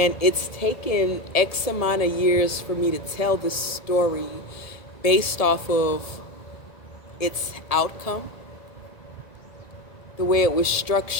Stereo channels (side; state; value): right; late; 1.7 ms